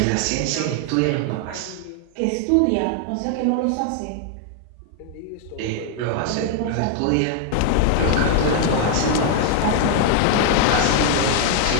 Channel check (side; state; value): both; different; correlation 0.00